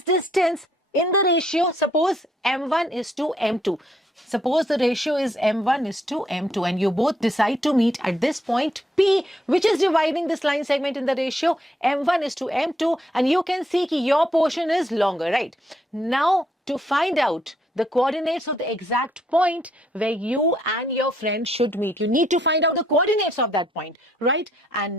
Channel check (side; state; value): both; normal; correlation 0.72